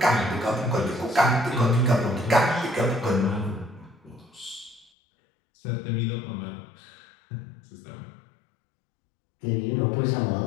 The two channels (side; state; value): right; drops out; at 4.9 s